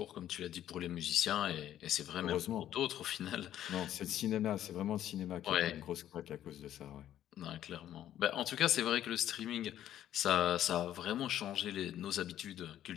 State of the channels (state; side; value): quieter; right; 11.7 dB